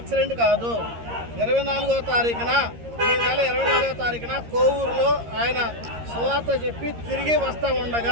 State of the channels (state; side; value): late; left; 13 ms